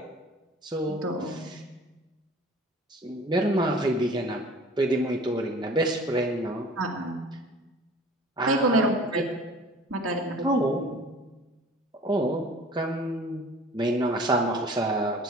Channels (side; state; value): both; normal; correlation 0.46